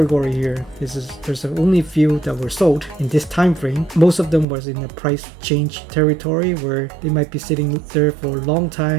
here, there's only few that were sold in this time frame. Most of them was in the price change territory where they might be sitting there for a long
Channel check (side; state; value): left; drops out; at 4.5 s